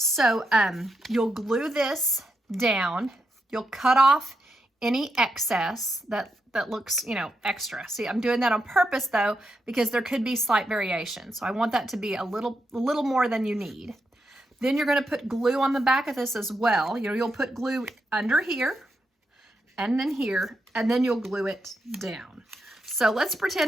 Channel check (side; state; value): both; normal; correlation 0.84